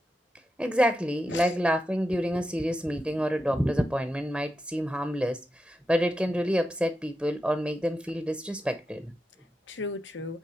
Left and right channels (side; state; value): both; normal; correlation 0.88